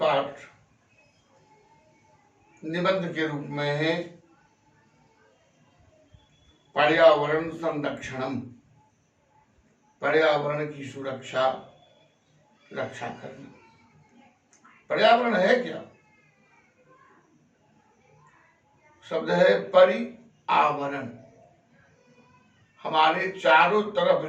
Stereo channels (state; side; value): identical; both; correlation 1.00